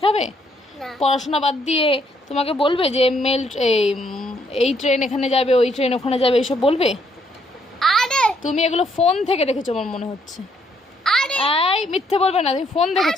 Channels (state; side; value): normal; both; correlation 0.71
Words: না, পড়াশোনা বাদ দিয়ে তোমাকে বলবে যে এই ট্রেন এখানে যাবে, ওই ট্রেন ওখানে যাবে, এইসব বলবে? আরে তুমি এগুলো ফোন থেকে দেখেছো আমার মনে হচ্ছে। আরে এই মিথ্যে বলবে না, তুমি ফোন